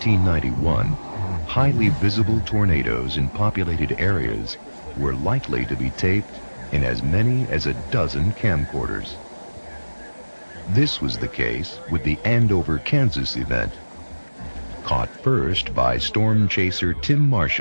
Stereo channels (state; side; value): inverted; both; correlation -1.00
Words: highly visible tornadoes in populated areas were likely to be taped in as many as a dozen camcorders. This was the case with the Andover, Kansas event. Caught first by storm chaser Tim